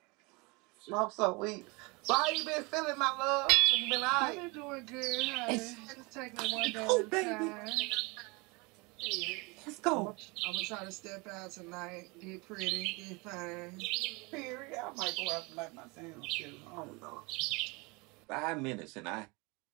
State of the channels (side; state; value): left; quieter; 27.4 dB